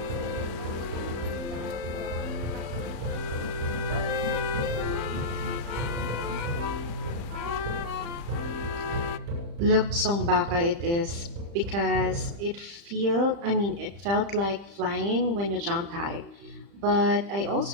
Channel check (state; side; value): late; left; 35 ms